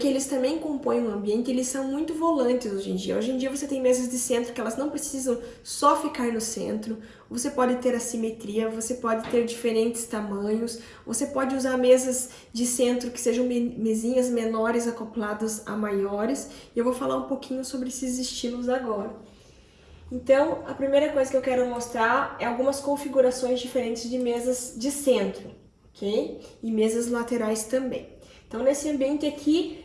eles também compõem um ambiente, eles são muito volantes hoje em dia. Hoje em dia você tem mesas de centro que elas não precisam só ficar no centro, você pode ter assimetria, você pode ter diferentes tamanhos, você pode usar mesas de centro que sejam mesinhas menores acopladas a maiores, e eu vou falar um pouquinho sobre esses estilos agora. Então, a primeira coisa que eu quero mostrar é algumas configurações diferentes de mesas de centro, ok? E mesas laterais também. Então, nesse ambiente aqui,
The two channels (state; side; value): identical; both; correlation 1.00